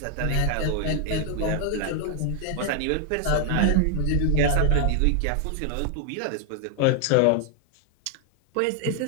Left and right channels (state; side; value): different; both; correlation 0.00